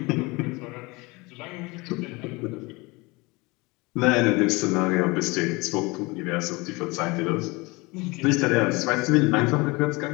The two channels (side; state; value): right; quieter; 24.8 dB